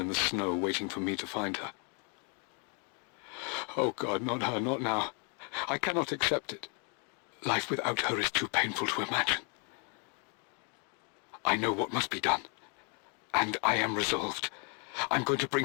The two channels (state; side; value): quieter; right; 37.4 dB